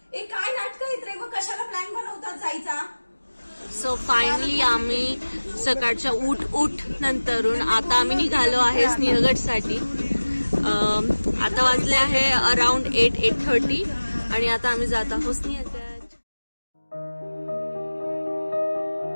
ए काय नाटक आहेत रे? मग कशाला प्लॅन बनवतात जायचा? सो फायनली आम्ही सकाळच्या उठ नंतरून आता आम्ही निघालो आहे सिंहगडसाठी. आता वाजले आहे अराउंड 8:30 आणि आता आम्ही जात आहोत सिंहगड.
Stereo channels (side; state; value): both; inverted; correlation -1.00